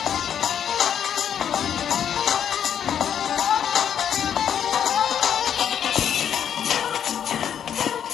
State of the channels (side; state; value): right; quieter; 8.9 dB